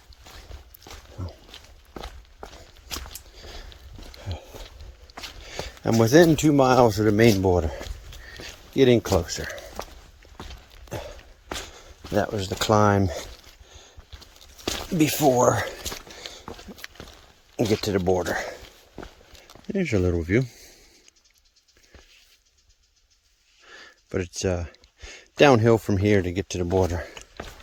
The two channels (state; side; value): identical; both; correlation 1.00